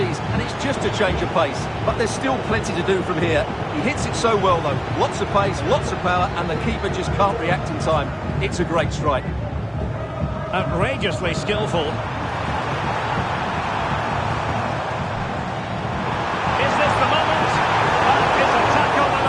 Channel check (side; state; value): both; identical; correlation 1.00